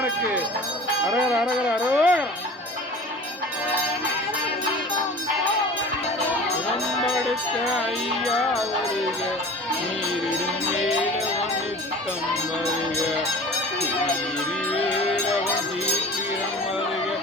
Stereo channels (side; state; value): both; normal; correlation 0.40